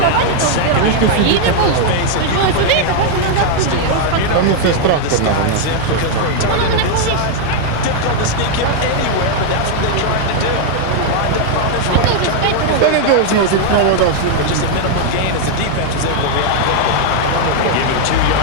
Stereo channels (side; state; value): both; different; correlation 0.00